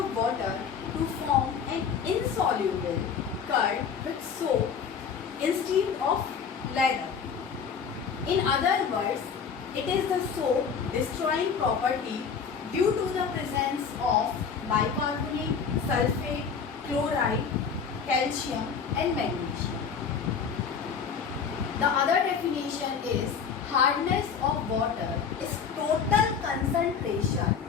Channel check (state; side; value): quieter; right; 6.5 dB